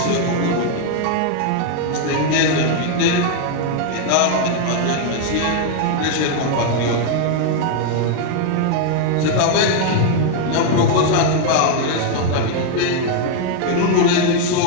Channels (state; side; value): different; both; correlation 0.00